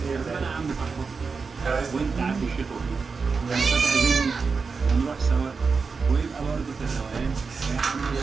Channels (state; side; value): quieter; left; 4.9 dB